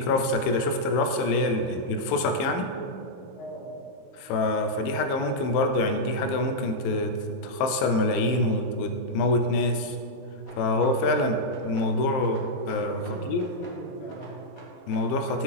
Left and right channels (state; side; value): late; right; 23 ms